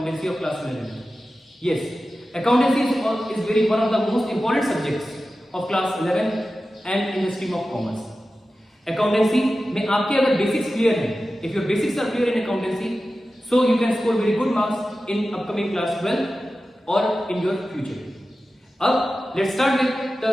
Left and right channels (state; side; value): normal; both; correlation 0.94